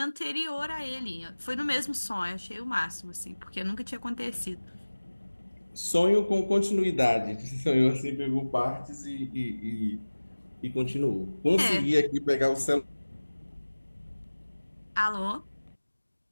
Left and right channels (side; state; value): both; inverted; correlation -1.00